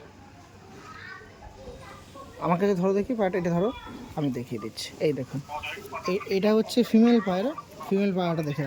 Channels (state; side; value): identical; both; correlation 1.00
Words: আমার কাছে ধরো দেখি পায়রাটা, এটা ধরো আমি দেখিয়ে দিচ্ছি। এই দেখুন এটা হচ্ছে ফিমেল পায়রা। ফিমেল পায়রাটা দেখে